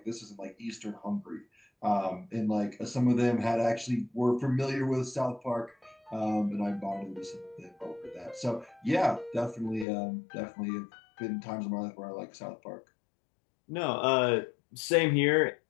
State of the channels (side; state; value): right; drops out; at 9.9 s